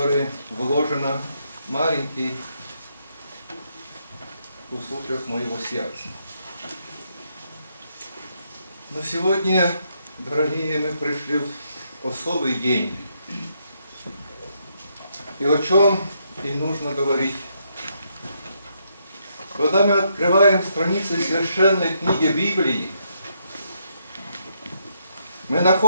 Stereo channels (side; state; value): both; inverted; correlation -0.76